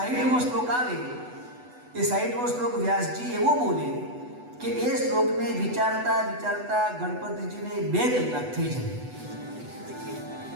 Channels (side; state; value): left; late; 8.1 ms